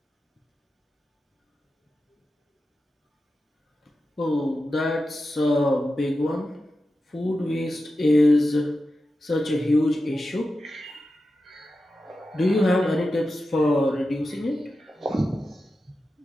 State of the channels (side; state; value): both; normal; correlation 0.92